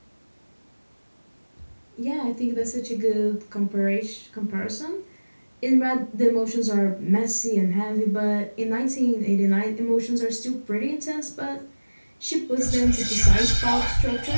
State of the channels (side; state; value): both; inverted; correlation -1.00